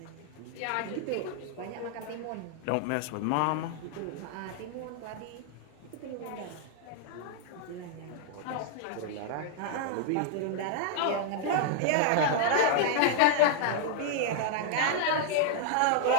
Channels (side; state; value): both; different; correlation 0.00